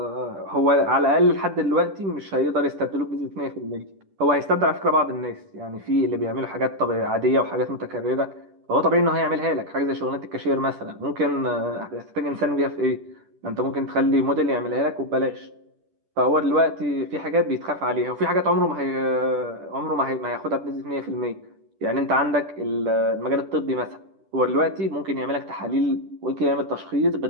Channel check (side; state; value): left; late; 10 ms